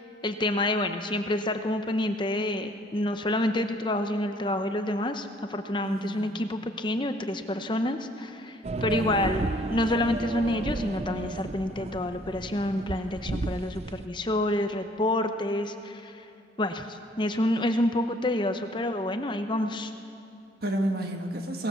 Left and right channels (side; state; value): both; normal; correlation 0.60